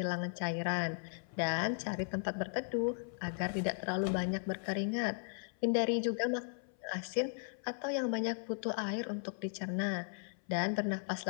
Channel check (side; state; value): right; silent; 53 dB below the other